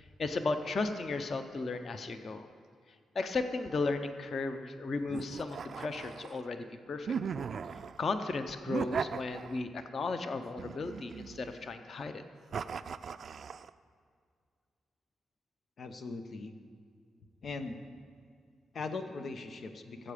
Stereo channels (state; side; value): normal; both; correlation 0.83